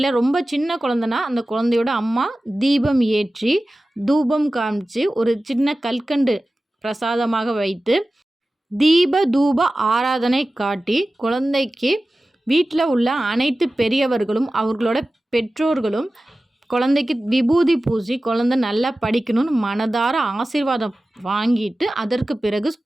ரொம்ப சின்ன குழந்தைனா அந்த குழந்தையோட அம்மா தீபம் ஏற்றி தூபம் காமிச்சு ஒரு சின்ன கல்கண்டு பிரசாதமாக வைத்து தீப தூப ஆராதனை காட்டி குழந்தைக்கு வீட்டில் உள்ள அனைத்து பெரியவர்களும் அவர்களோட பெற்றோர்களும் குழந்தைக்கு விபூதி பூசி குழந்தை நல்லா படிக்கணும்னு மனதார ஆசீர்வாதம் வாங்கிட்டு அதற்கு பிறகு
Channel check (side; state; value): both; normal; correlation 0.96